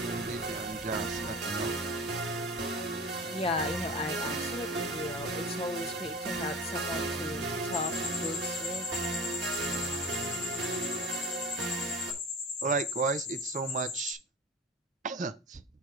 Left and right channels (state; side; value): normal; both; correlation 0.35